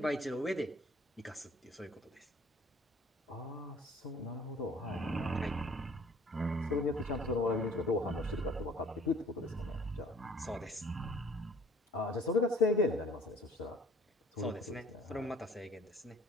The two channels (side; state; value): both; normal; correlation 0.54